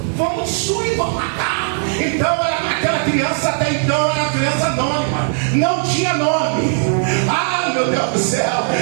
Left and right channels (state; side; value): silent; left; 64 dB below the other